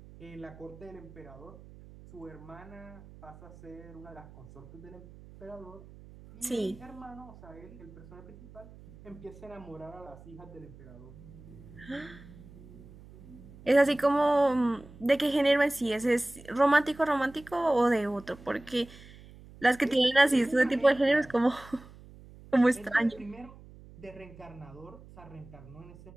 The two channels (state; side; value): noise; right; hum, 19 dB below the sound